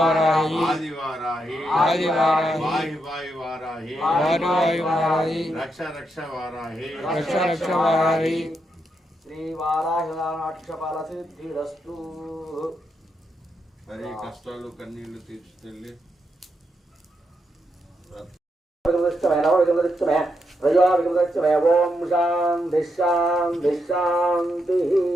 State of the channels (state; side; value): normal; both; correlation 0.82